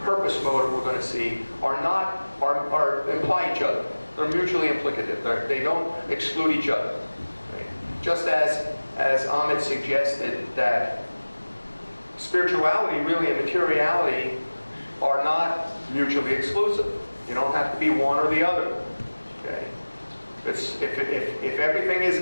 motive, we're going to see, are imply each other. They're mutually implicative. They don't exclude each other. Okay. Just as Amit suggested that spirituality really and materiality are not mutually exclusive. You don't have to be one or the other. Okay? If everything is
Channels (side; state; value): both; inverted; correlation -1.00